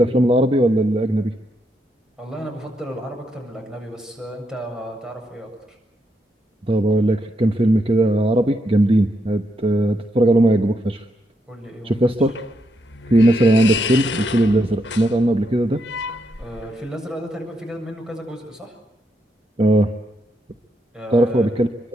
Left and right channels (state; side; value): normal; both; correlation 0.79